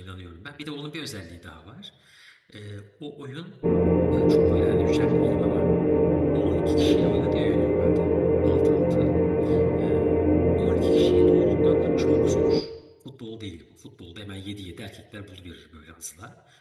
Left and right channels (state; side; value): identical; both; correlation 1.00